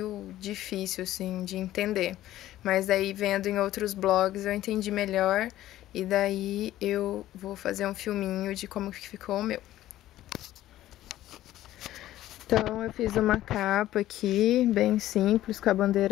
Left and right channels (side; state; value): right; quieter; 14.1 dB